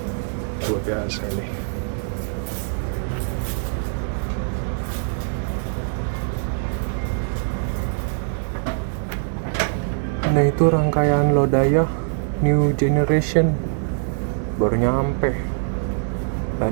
luar biasa ini. Nah, itu rangkaian Lodaya New Generation baru nyampe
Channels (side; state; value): left; silent; digital silence